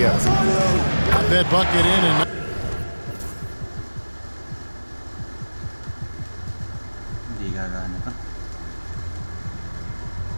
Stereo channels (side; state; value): both; inverted; correlation -1.00